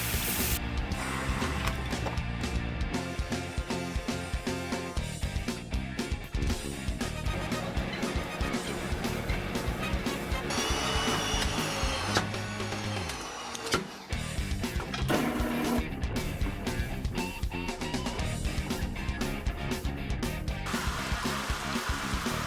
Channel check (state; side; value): identical; both; correlation 1.00